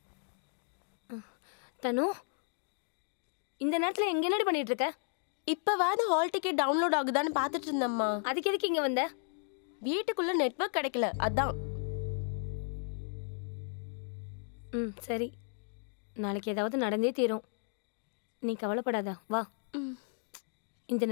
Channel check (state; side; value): silent; right; 55 dB below the other